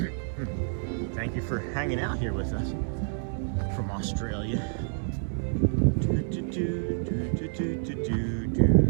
Thank you for hanging out here with us from Australia. All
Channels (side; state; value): left; silent; digital silence